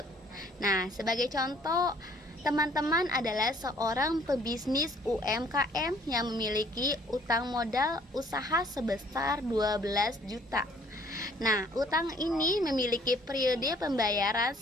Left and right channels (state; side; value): normal; both; correlation 0.59